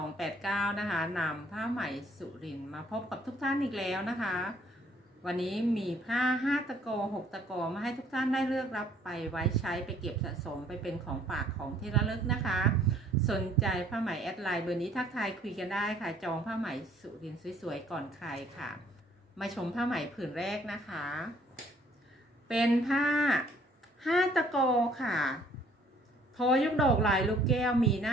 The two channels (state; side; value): normal; both; correlation 0.61